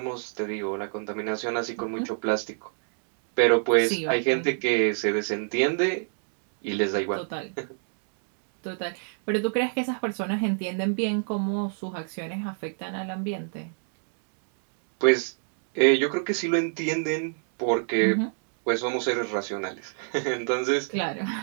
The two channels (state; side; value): silent; left; 58 dB below the other